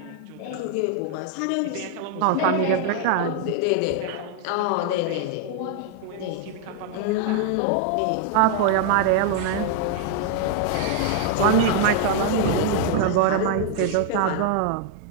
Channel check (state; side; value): different; both; correlation 0.00